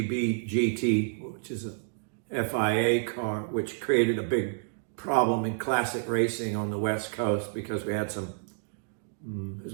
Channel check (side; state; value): left; silent; digital silence